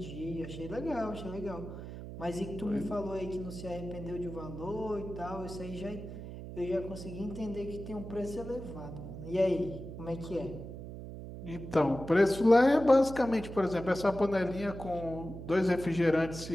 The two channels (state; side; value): noise; right; hum, 10 dB below the sound